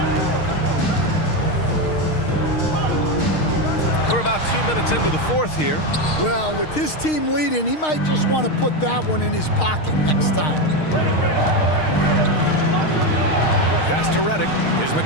We're about 2 minutes into the fourth here. Well, with his team leading, he might just want to put that one in his pocket next time. Pass to Redick. Here's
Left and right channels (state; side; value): late; right; 6.5 ms